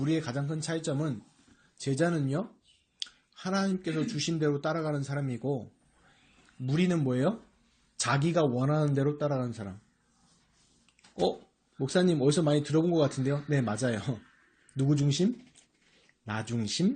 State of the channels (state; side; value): identical; both; correlation 1.00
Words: 가장 큰 차이점은 제자는요. 하나님께서 주신 대로 따라가는 사람이고 무리는 뭐예요? 자기가 원하는 대로 따라가는 사람. 목사님 어디서 많이 들어본 것 같은데요? 네, 맞아요. 누구 중심? 나